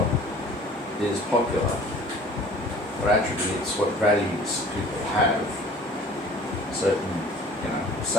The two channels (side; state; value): both; normal; correlation 0.48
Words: is popular, what attributes, what values people have, certain,